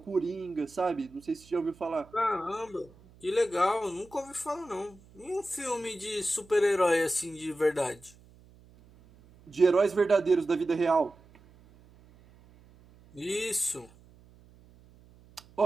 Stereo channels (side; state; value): right; noise; hum, 26 dB below the sound